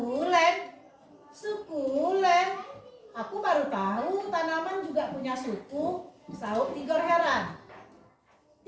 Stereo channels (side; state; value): both; identical; correlation 1.00